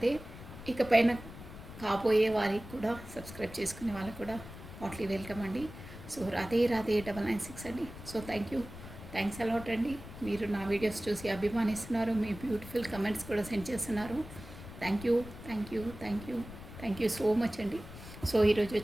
ఇకపైన కాబోయే వారికి కూడా సబ్స్క్రైబ్ చేసుకునే వాళ్ళకి కూడా హాట్లీ వెల్కమ్ అండి. సో రాధే రాధే 996 అండి. సో థ్యాంక్స్ అలాట్ అండి. మీరు నా వీడియోస్ చూసి అభిమానిస్తున్నారు, మీ బ్యూటిఫుల్ కమెంట్స్ కూడా సెండ్ చేస్తున్నారు. థ్యాంక్ యూ సో మచ్ అండి. సో ఈరోజు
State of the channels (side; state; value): left; noise; rumble, 14 dB below the sound